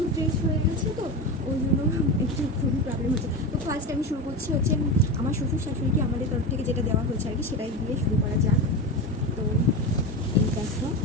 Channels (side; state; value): both; normal; correlation 0.22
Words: ড্রেস হয়ে গেছে, তো ওই জন্য একটু খুবই প্রবলেম হচ্ছে। তো ফার্স্ট আমি শুরু করছি হচ্ছে আমার শ্বশুর শাশুড়িকে আমাদের তরফ থেকে যেটা দেওয়া হয়েছে আর কি, সেটাই দিয়ে শুরু করা যাক। তো এই দেখো,